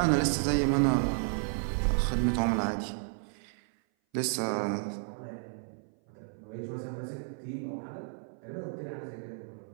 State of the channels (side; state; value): left; silent; 56 dB below the other